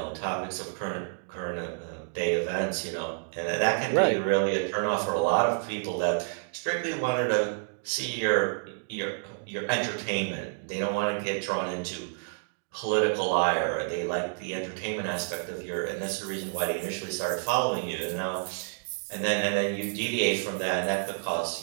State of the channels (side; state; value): left; silent; digital silence